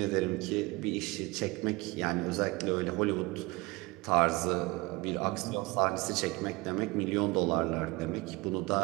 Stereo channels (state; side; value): quieter; left; 23.9 dB